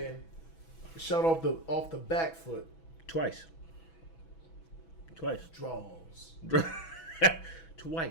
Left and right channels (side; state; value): right; late; 6.1 ms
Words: shot off the back foot. Twice. Draws.